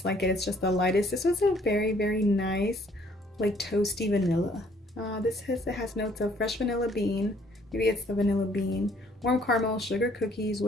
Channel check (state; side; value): normal; both; correlation 0.62